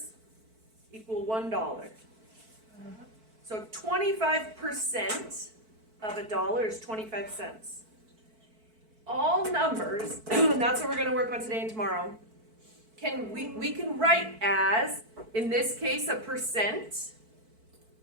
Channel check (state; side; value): late; left; 4.5 ms